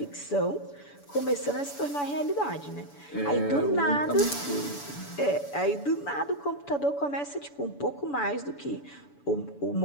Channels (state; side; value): late; right; 7.0 ms